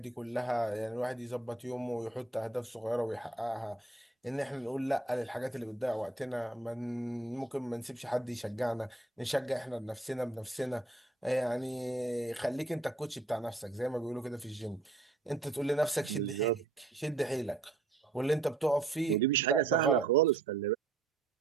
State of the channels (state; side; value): quieter; left; 3.2 dB